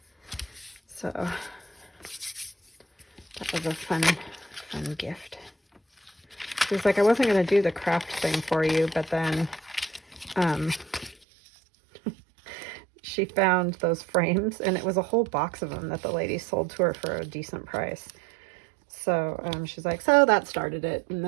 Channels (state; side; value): drops out; left; at 11.2 s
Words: So that was a fun gift. She was like, I wasn't going to do the craft thing for you, but then she found those frames, and it was a whole box of them that the lady sold to her for a decent price. So she's like, so that started it. And